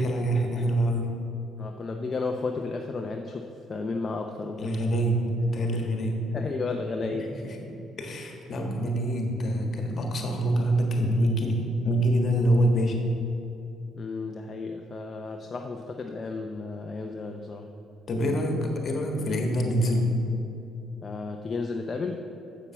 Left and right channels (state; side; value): normal; both; correlation 0.73